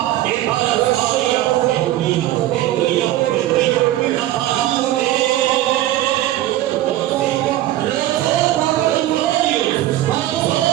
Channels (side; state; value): left; quieter; 14.6 dB